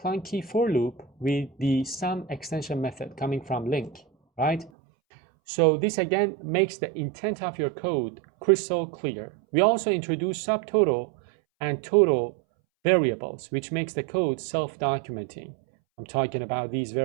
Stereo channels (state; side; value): drops out; left; at 4.7 s